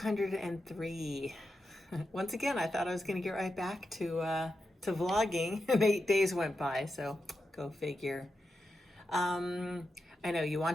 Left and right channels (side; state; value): both; normal; correlation 0.88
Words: Once again, I thought I was going to get right back to vlogging, and 8 days went by, so go figure. Um, I know you